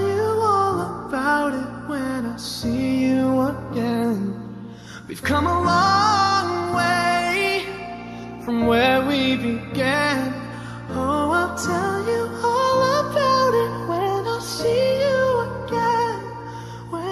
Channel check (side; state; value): both; identical; correlation 1.00